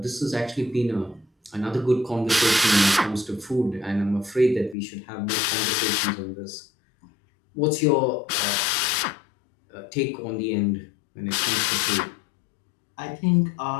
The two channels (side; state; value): right; drops out; at 4.8 s